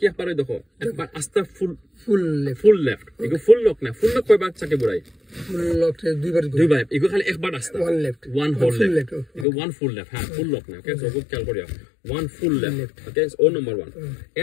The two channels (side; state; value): right; drops out; at 9.5 s